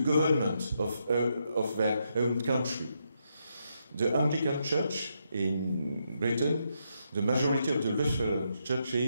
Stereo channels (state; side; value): inverted; both; correlation -0.80